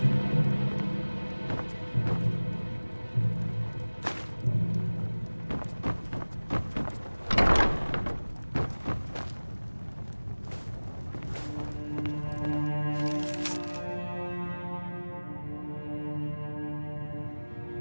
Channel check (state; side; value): inverted; both; correlation -1.00